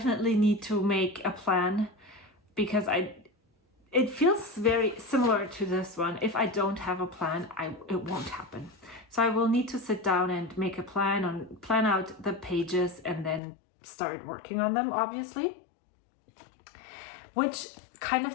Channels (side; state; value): right; drops out; at 13.4 s